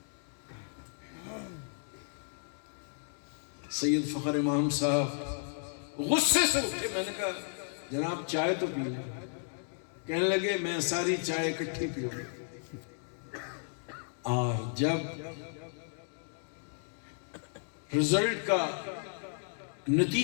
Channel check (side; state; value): right; silent; digital silence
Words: سید فخر امام صاحب غصے سے اٹھے، میں نے کہا جناب چائے تو پی لیں۔ کہنے لگے میں ساری چائے اکٹھی پیوں۔ اور جب رزلٹ کا